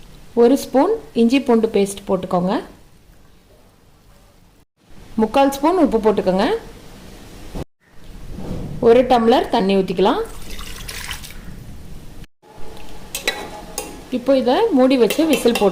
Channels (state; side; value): identical; both; correlation 1.00